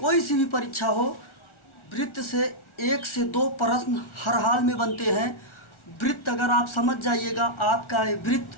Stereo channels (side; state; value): right; late; 1.4 ms